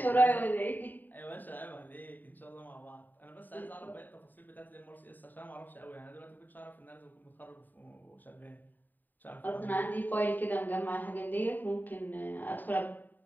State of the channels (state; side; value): late; right; 0.089 ms